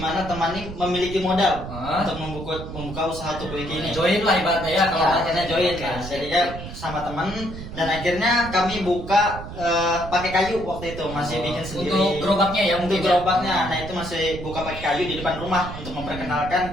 mana teman ini memiliki modal untuk membuka usaha Tukuiki ini. Join lah ibaratnya ya. Kalau akhirnya join kan, jadinya sama teman, dan akhirnya kami buka pakai kayu waktu itu, masih bikin sendiri. Untuk gerobaknya ya Untuk mungkin. gerobaknya, nah itu masih buka pakai kayu di depan rumah untuk memperkenalkan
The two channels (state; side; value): noise; right; rumble, 10 dB below the sound